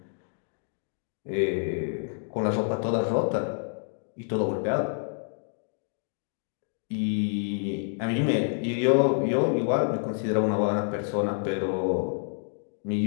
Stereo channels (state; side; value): silent; right; digital silence